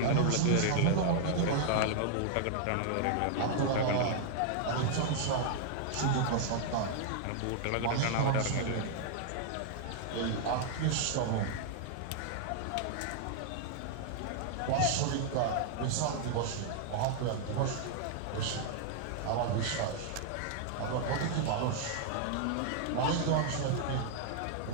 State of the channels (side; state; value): both; different; correlation 0.00